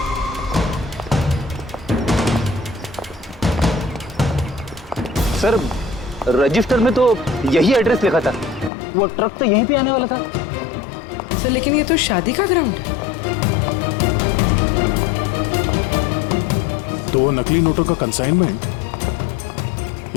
सर रजिस्टर में तो यही एड्रेस लिखा था, वो ट्रक तो यहीं पे आने वाला था। सर लेकिन ये तो शादी का ग्राउंड है। तो नकली नोटों का कंसाइनमेंट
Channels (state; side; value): drops out; right; at 8.7 s